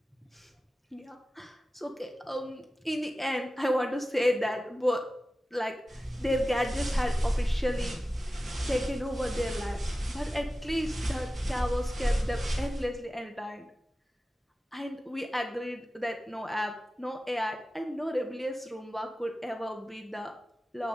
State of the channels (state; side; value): normal; both; correlation 0.95